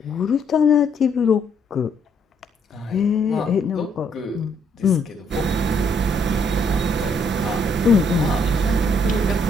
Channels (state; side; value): normal; both; correlation 0.70